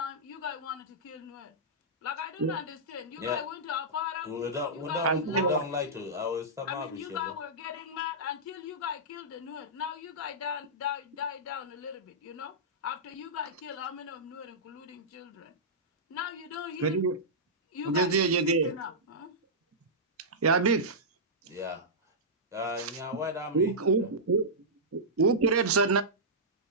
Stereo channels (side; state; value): both; normal; correlation -0.13